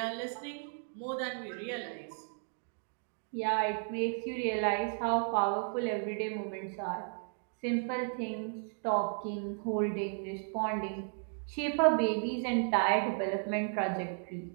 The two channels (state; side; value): silent; left; 55 dB below the other